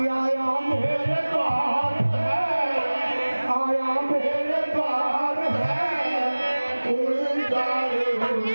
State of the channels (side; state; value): both; inverted; correlation -1.00